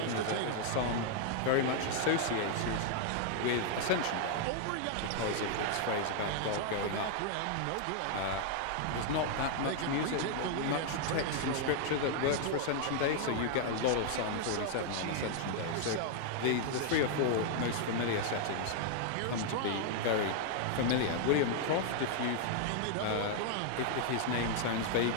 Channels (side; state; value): both; different; correlation 0.00